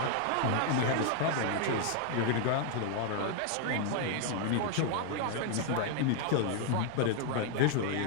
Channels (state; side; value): different; both; correlation 0.00